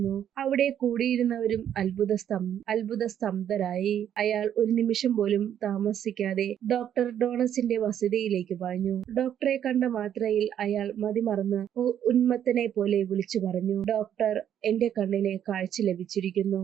അവിടെ കൂടിയിരുന്നവരും അത്ഭുതസ്തംഭരായി. അയാൾ ഒരു നിമിഷം പോലും താമസിക്കാതെ ഡോക്ടർ ഡോണസിന്റെ വസതിയിലേക്ക് പാഞ്ഞു. ഡോക്ടറെ കണ്ട മാത്രയിൽ അയാൾ മതിമറന്ന് ഉന്മത്തനെ പോലെ വിളിച്ചു പറഞ്ഞു: ഡോക്ടർ, എന്റെ കണ്ണിന് കാഴ്ച ലഭിച്ചിരിക്കുന്നു.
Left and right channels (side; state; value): left; quieter; 9.9 dB